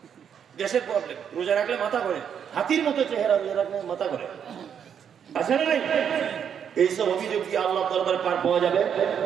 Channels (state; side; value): quieter; left; 8.1 dB